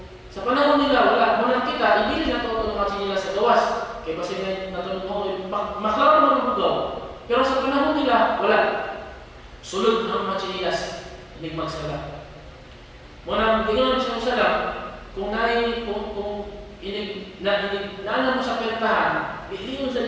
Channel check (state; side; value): identical; both; correlation 1.00